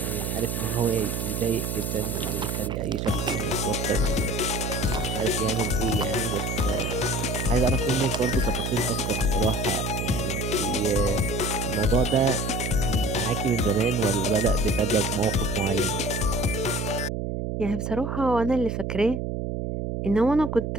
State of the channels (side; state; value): right; noise; hum, 2 dB below the sound